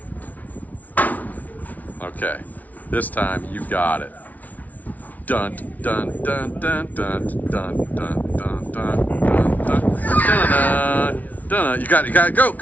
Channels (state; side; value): late; right; 0.074 ms